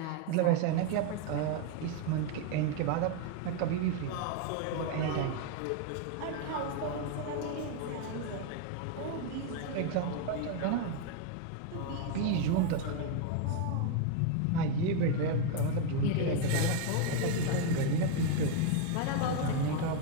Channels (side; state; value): both; different; correlation 0.01